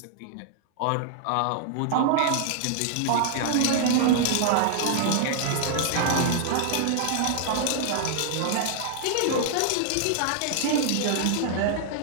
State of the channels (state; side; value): different; both; correlation -0.01